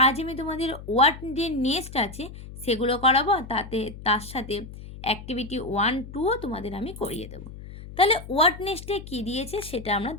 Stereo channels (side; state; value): left; noise; hum, 14 dB below the sound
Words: আজ আমি তোমাদের ওয়ার্ড যে নেক্সট আছে সেগুলো করাবো, আর তার সাথে অ্যাক্টিভিটি 1, 2ও তোমাদের আমি করিয়ে দেবো। তাহলে ওয়ার্ড নেক্সটে কী দিয়েছে সেটা আমরা